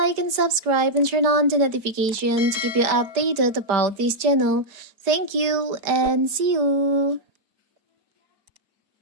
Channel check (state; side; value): late; left; 5.1 ms